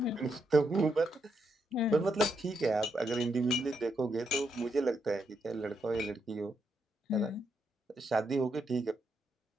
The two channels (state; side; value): normal; both; correlation 0.80